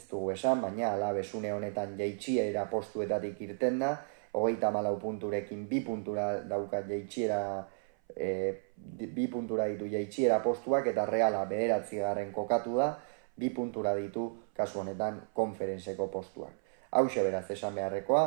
dugu esan, baina Alabes une honetan jaitsiera postuetatik irten da, 34 punturekin 2 puntura dauka jaitsiera, 2 puntura ditu jaitsiera postuak, eta Reala 9. kokatu da, 2 puntura ditu kasu honetan konferentzeko postuak. Hauxe beraz esan beharrekoa,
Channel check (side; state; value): left; silent; 56 dB below the other